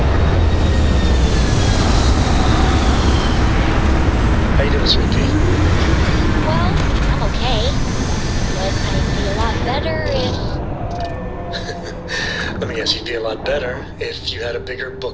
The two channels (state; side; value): identical; both; correlation 1.00